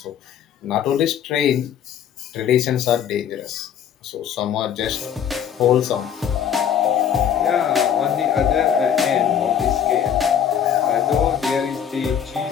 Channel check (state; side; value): quieter; right; 8.9 dB